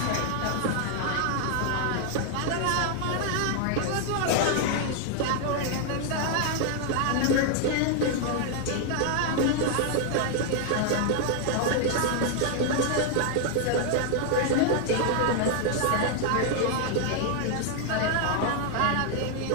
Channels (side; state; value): both; different; correlation 0.00